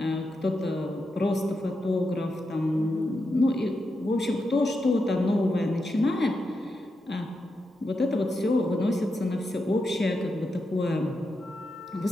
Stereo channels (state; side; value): normal; both; correlation 0.86